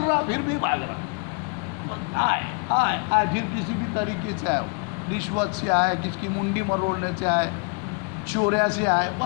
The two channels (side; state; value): right; quieter; 37.5 dB